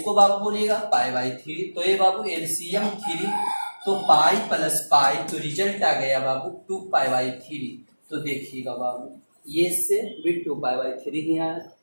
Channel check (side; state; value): both; inverted; correlation -1.00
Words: बाबू बोलिएगा पाई बाई 3। तो ये बाबू एलसीएम 3, तो पाई प्लस पाई, तो रिजल्ट आ गया बाबू 2 पाई बाई 3। तो देखिएगा बाबू ये से भी 2 पाई बाई 3 ही आया,